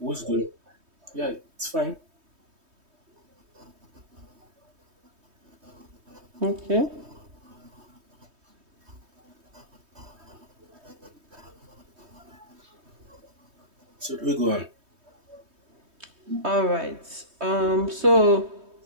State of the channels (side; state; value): left; late; 3.2 ms